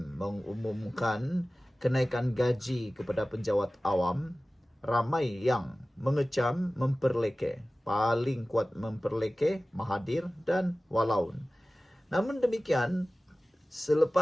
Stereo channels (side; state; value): both; normal; correlation 0.97